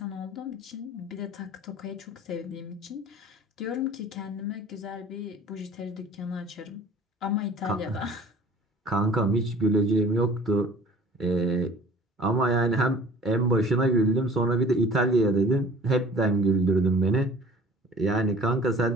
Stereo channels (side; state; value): both; normal; correlation 0.47